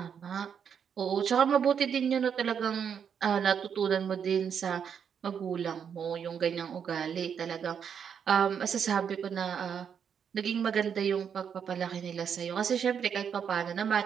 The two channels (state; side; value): quieter; left; 7.5 dB